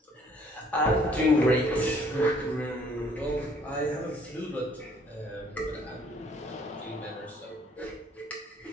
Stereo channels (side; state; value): both; normal; correlation 0.61